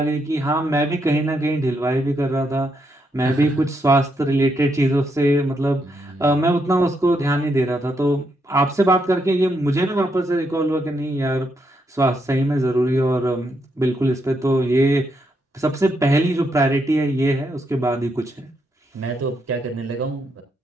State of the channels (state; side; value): normal; both; correlation 0.79